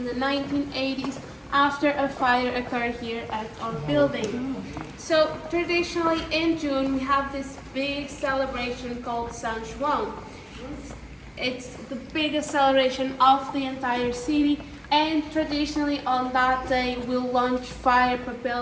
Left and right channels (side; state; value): both; identical; correlation 1.00